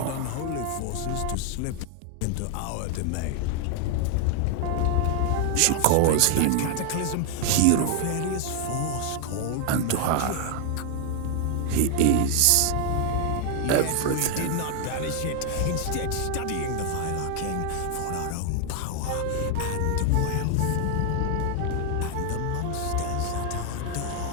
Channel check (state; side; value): different; both; correlation 0.00